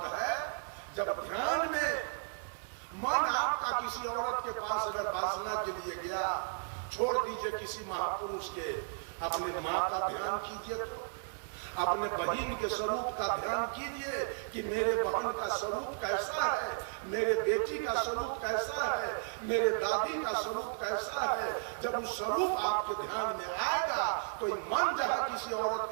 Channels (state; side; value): silent; left; digital silence